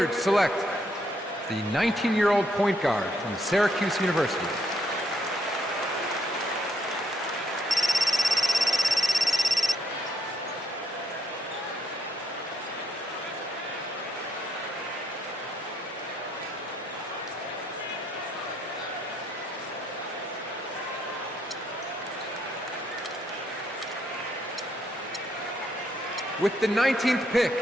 select the 19-year-old point guard from Syracuse University. With the 19th pick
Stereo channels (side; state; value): both; normal; correlation 0.72